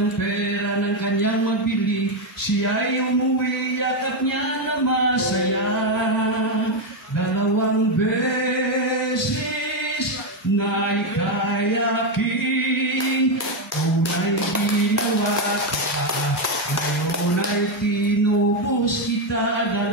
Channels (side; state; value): both; normal; correlation 0.06